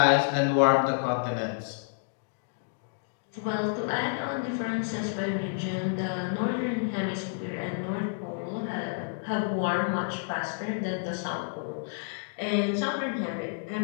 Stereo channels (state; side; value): silent; right; digital silence